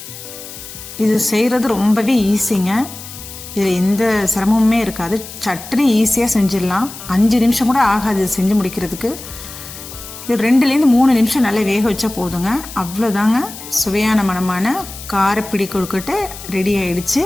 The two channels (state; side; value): noise; left; hiss, 13 dB below the sound